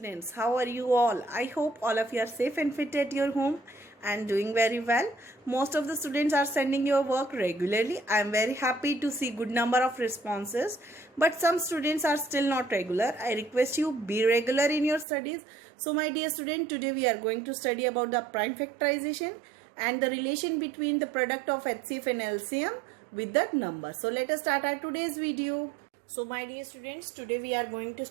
How are you all? I hope all of you are safe and fit at your home and doing very well. Most of the students are sending your work regularly. I am very happy to see good number of responses. But some students are still not regular. I request you be regular in your studies. So my dear student, today we are going to study about the prime factorization and the relation between the product of HCF and LCM with that number. So let us start our today's video. So my dear students, today we are going to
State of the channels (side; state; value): left; drops out; at 15.1 s